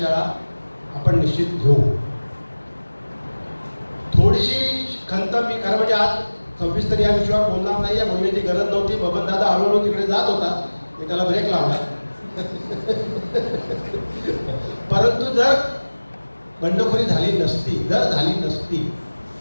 आपण निश्चित घेऊ. थोडीशी खंत मी खरं म्हणजे आज सविस्तर या विषयावर बोलणार नाही, या बोलण्याची गरज नव्हती. बबन दादा हळूहळू तिकडे जात होता, मी त्याला ब्रेक लावला. परंतु जर बंडखोरी झाली नसती, जर झाली नसती,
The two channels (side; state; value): both; inverted; correlation -1.00